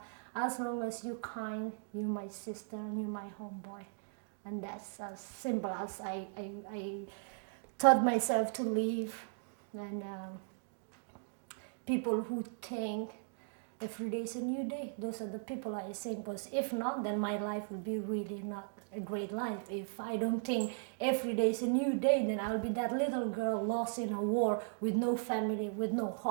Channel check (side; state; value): left; silent; digital silence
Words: As long as you're kind, you're my sister and you're my homeboy. And that's as simple as I taught myself to live. And people who think every day is a new day, those are the people I sing, because if not, then my life will be really not a great life. If I don't think every day is a new day, then I'll be that little girl lost in a war with no family, with no